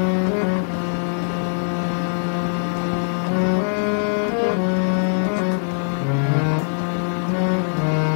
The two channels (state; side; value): silent; right; 55 dB below the other